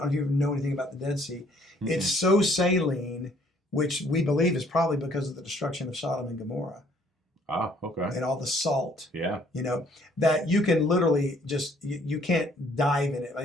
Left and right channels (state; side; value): normal; both; correlation 0.62